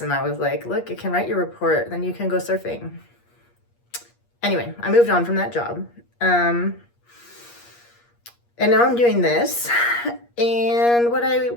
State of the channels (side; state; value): right; late; 8.5 ms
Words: And I was like, look, you can write your report, then you can go surfing. Anyway, I moved on from that job. And now I'm doing this. And what I